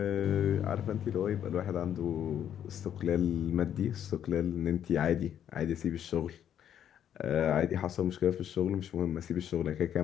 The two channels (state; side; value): quieter; right; 9.8 dB